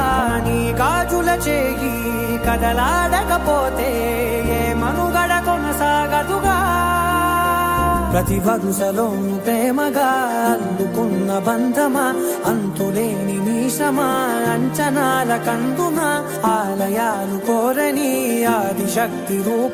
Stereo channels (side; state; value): both; identical; correlation 1.00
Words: నీ గాజుల చేయి కదలాడకపోతే ఏ మనుగడ కొనసాగదుగా ప్రతి వరుసలోను ప్రేమగా అల్లుకున్న బంధమా అంతులేని మీసమా అంచనాల కందున ఆలయాలు కోరని ఆదిశక్తి